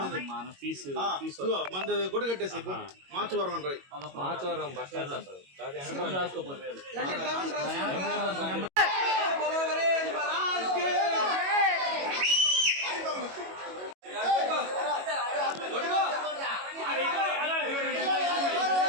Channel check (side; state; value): left; late; 22 ms